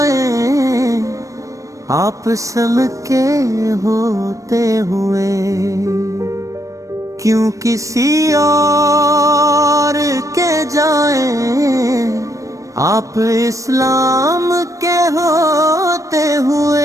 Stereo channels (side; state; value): left; late; 0.16 ms